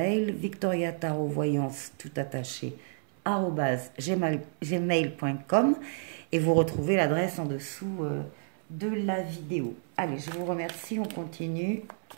victoriatarovoyance tout attaché @gmail.com et vous retrouvez l'adresse en dessous de la vidéo. Allez, je vous remercie, on continue.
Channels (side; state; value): left; silent; 58 dB below the other